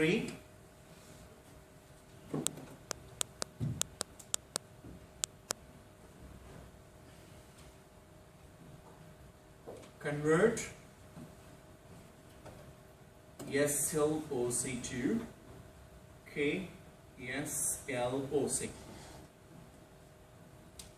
Convert SLOC to KSLOC.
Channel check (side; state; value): both; identical; correlation 1.00